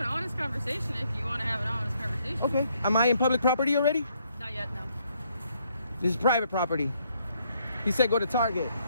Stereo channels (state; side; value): inverted; both; correlation -0.71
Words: honest conversation if you want to have an honest conversation. Okay. Am I in public property already? Not yet, no. This is private property. He said go to Target.